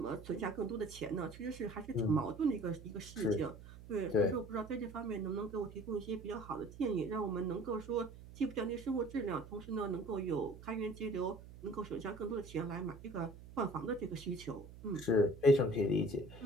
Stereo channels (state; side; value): noise; right; hum, 16 dB below the sound